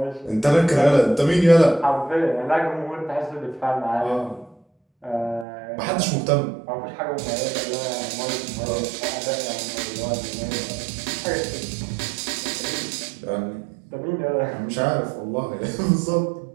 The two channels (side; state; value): left; drops out; at 5.5 s